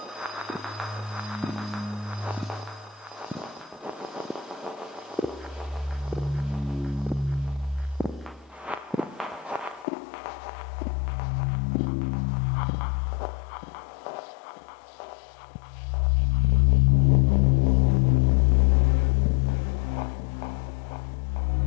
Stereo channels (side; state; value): right; drops out; at 9.9 s